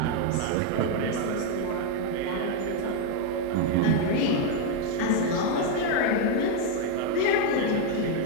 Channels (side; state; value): both; different; correlation 0.01